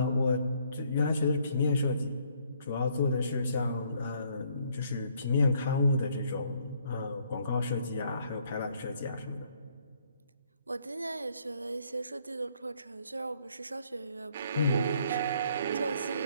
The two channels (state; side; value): inverted; both; correlation -0.66